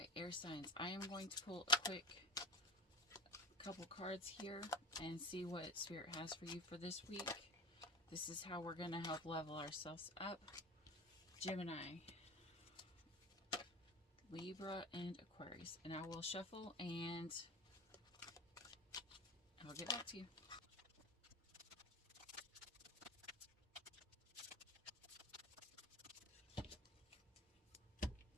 Okay, air signs. I am going to pull a quick couple cards here and see what Spirit has for you for this week. This is how we're going to help level ourselves up. Gemini, Libra, and Aquarius. And I will shuffle and I'll get back to you.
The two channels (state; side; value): normal; both; correlation 0.29